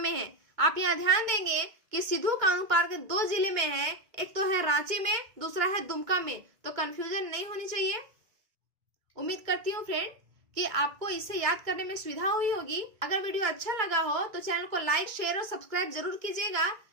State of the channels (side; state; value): left; late; 2.1 ms